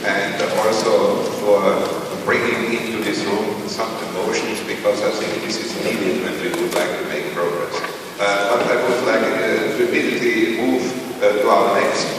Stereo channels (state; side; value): identical; both; correlation 1.00